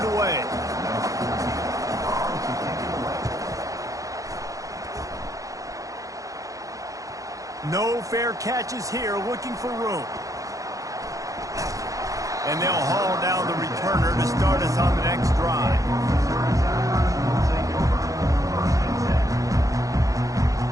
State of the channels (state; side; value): late; left; 0.16 ms